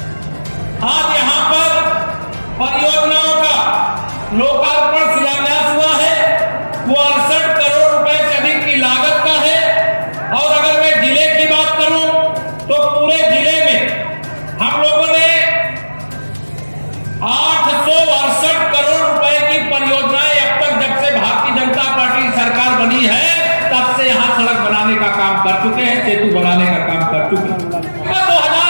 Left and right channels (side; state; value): both; inverted; correlation -1.00